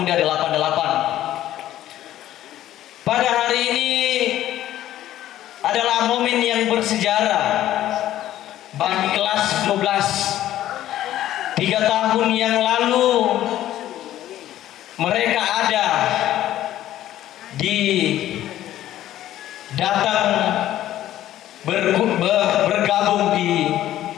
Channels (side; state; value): right; quieter; 13.1 dB